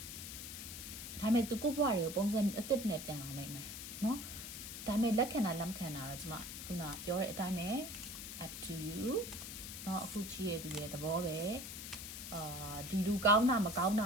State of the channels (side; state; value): left; noise; hiss, 8 dB below the sound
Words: ဒါပေမဲ့သူကိုဘွားတွေကိုပုံစံအသစ်နဲ့ပြန်လာနိုင်မယ်နော်ဒါပေမဲ့လက်ခံတာလက်မခံတာတော့ကျမခုနပြောတဲ့အတိုင်းပဲ up to you နော်အခုချီးရသူရဲ့သဘောပဲဒီလူကောင်းတာမကောင်းတ